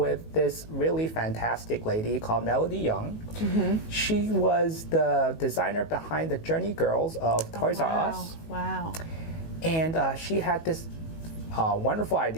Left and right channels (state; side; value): late; right; 19 ms